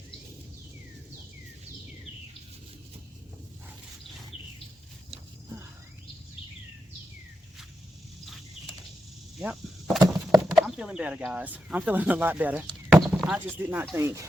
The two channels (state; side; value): normal; both; correlation 0.87